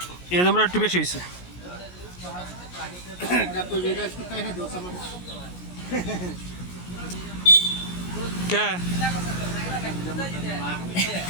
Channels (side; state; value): right; late; 17 ms